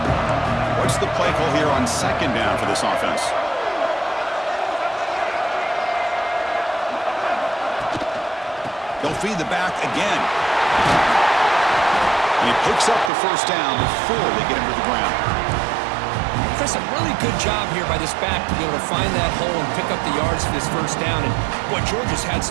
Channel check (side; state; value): left; drops out; at 13.1 s